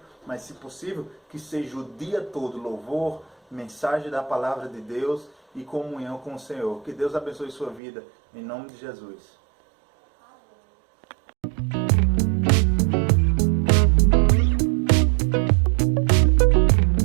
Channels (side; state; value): left; drops out; at 7.8 s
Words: mas, se possível, que seja o dia todo louvor, mensagem da palavra de Deus e comunhão com o Senhor. Que Deus abençoe sua vida, em nome de Jesus.